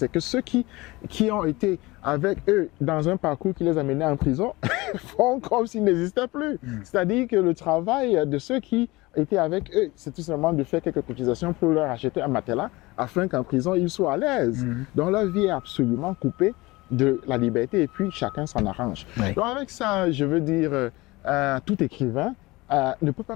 que ceux qui ont été avec eux dans un parcours qui les a menés en prison font comme s'ils n'existaient plus. C'est-à-dire que le travail de ceux qui étaient avec eux, c'est tout simplement de faire quelques cotisations pour leur acheter un matelas afin qu'en prison, ils soient à l'aise. Donc leur vie est absolument coupée de la liberté et puis chacun s'en arrange. Donc avec ça, je veux dire, tout écrivain ne peut pas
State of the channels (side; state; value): right; quieter; 21.6 dB